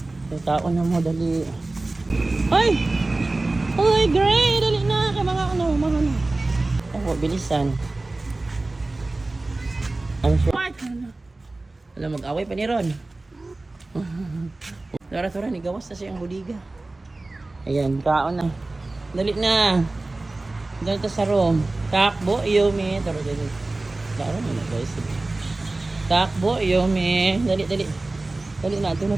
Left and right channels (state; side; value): quieter; left; 3.1 dB